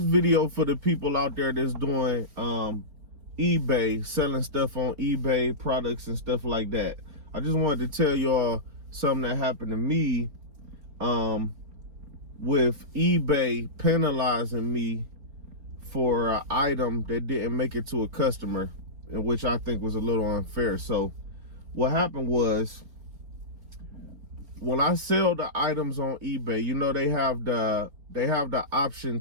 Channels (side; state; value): left; late; 4.3 ms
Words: video for the people out there that's doing eBay, selling stuff on eBay, products and stuff like that. I just wanted to tell y'all something that happened to me with eBay penalizing me for an item that didn't make it to a customer, and which I think was a little unfair. So what happened was, when I sell the items on eBay, you know, they have the option